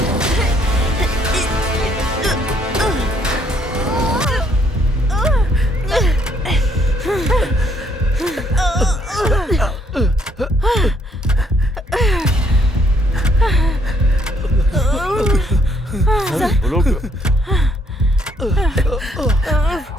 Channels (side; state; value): both; normal; correlation 0.67